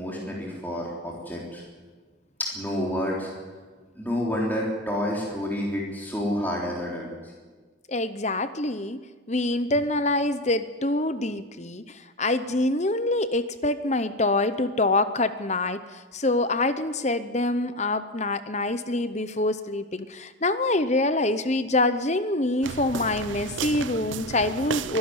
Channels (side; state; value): both; normal; correlation 0.22